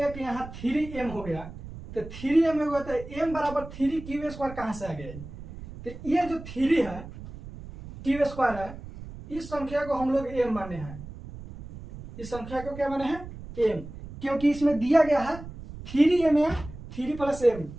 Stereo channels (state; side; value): noise; right; rumble, 13 dB below the sound